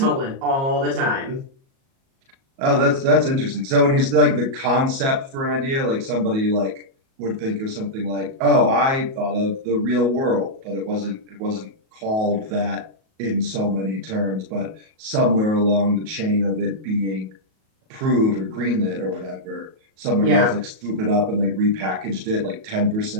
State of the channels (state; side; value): late; left; 37 ms